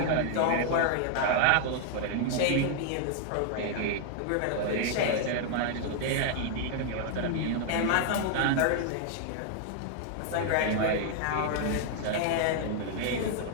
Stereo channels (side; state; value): both; different; correlation 0.00